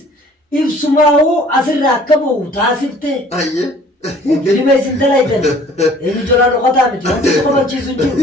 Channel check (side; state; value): both; normal; correlation 0.53